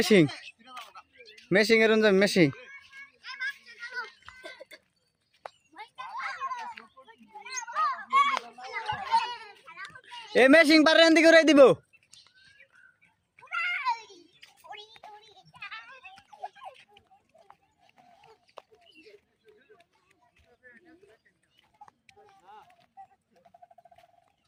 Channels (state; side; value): identical; both; correlation 1.00